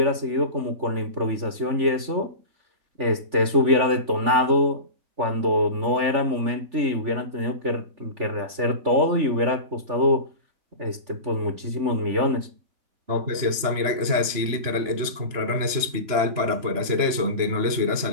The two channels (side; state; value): left; late; 3.4 ms